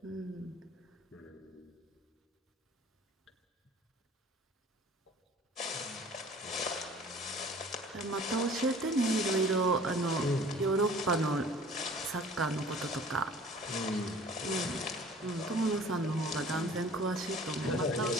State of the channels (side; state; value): both; normal; correlation 0.48